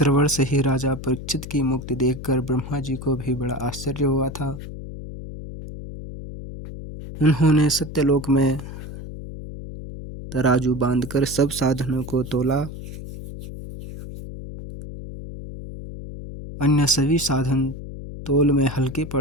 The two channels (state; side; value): noise; left; hum, 11 dB below the sound